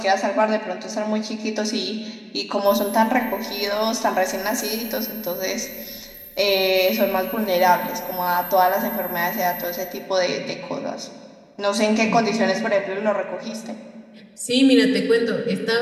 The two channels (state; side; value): identical; both; correlation 1.00